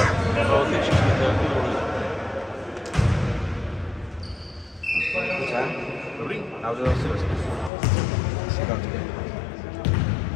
a otočíš mi to jako důležitý. Dobře? Dobrý? Já už to si vezmu.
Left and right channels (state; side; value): drops out; right; at 7.7 s